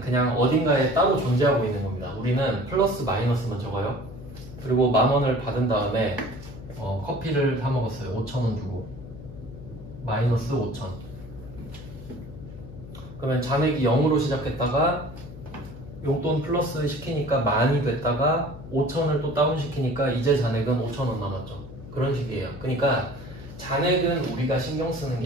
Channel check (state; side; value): noise; left; hum, 14 dB below the sound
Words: 그냥 어딘가에 따로 존재하고 있는 겁니다. 우리는 플러스 마이너스만 적어요. 그리고 10,000원을 받은 다음에 커피를 사 먹었어요. 5,000원 주고 마이너스 5,000. 그러면 잔액이 0으로 시작했다가 용돈 플러스 시키니까 10,000이 됐다가 5,000을 또 다운 시키니까 이제 잔액은 5,000원 남았죠. 그런 식이에요. 그러니까 잔액은 우리가 신경 쓰는